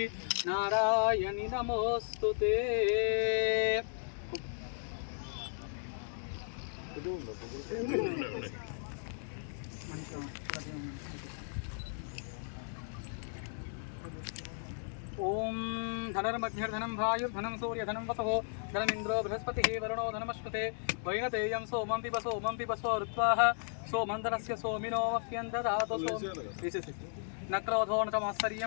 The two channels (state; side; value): silent; right; digital silence